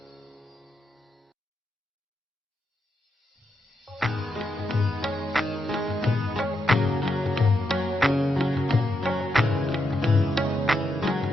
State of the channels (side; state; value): both; normal; correlation 0.83